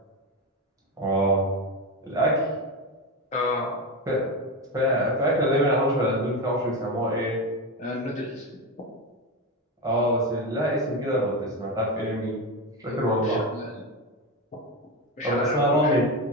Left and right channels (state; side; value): normal; both; correlation 0.16